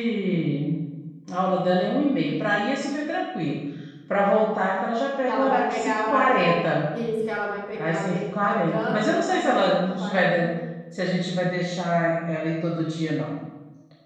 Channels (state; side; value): identical; both; correlation 1.00